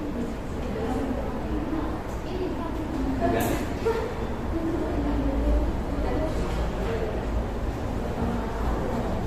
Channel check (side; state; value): both; identical; correlation 1.00